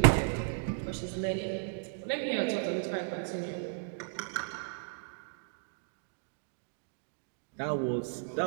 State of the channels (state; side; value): silent; left; digital silence